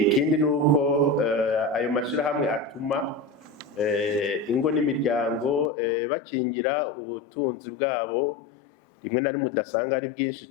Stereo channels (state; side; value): drops out; right; at 5.7 s